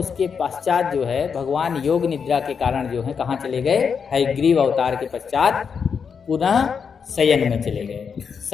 पश्चात जो है भगवान योग निद्रा के कारण जो है कहाँ चले गए? हयग्रीव अवतार के पश्चात पुनः शयन में चले गए।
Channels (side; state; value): right; quieter; 6.3 dB